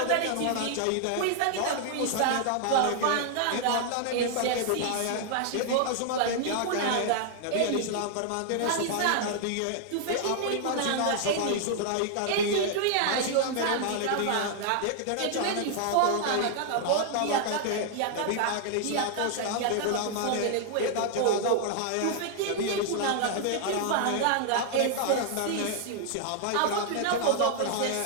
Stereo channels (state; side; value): different; both; correlation 0.00